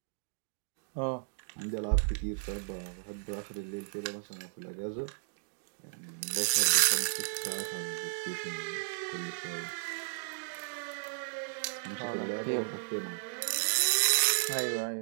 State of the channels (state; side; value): silent; left; digital silence